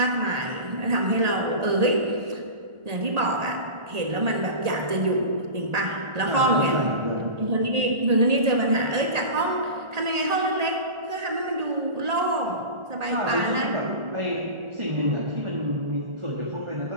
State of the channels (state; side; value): late; left; 1.8 ms